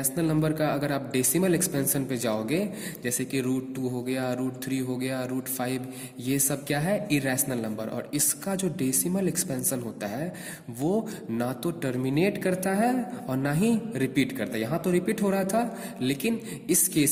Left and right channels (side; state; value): both; identical; correlation 1.00